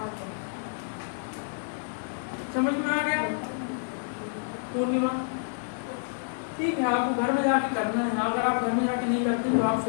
समझ में आ गया पूर्णिमा? ठीक है, आपको घर में जाके करना है। अगर आप घर में जाके नहीं करते तो आप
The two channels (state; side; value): silent; right; digital silence